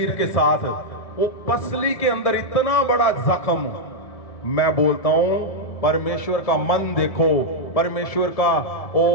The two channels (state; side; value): late; right; 1.7 ms